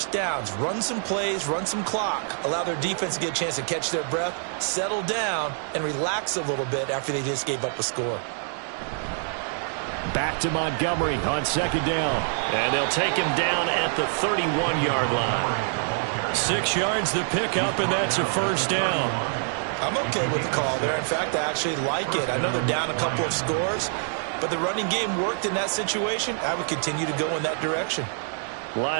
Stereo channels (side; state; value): left; silent; 60 dB below the other